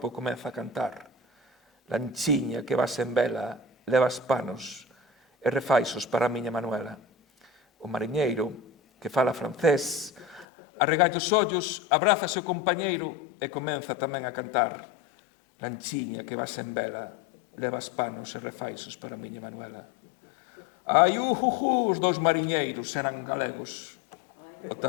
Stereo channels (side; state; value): right; drops out; at 10.5 s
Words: comeza a cantar. Lanchiña que vas en vela, levas panos e refaixos para a miña Manuela. O mariñeiro que fala francés arregalla os ollos, abraza o compañeiro e comeza tamén a cantar. Lanchiña que vas en vela, levas panos e refaixos para a miña Manuela. Ai, os dous mariñeiros eran galegos. O